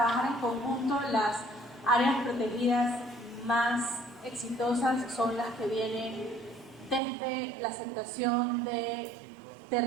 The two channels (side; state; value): left; drops out; at 7.0 s